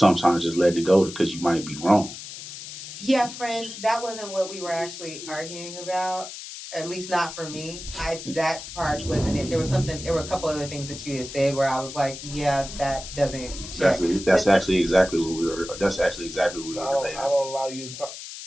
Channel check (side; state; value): left; noise; hiss, 11 dB below the sound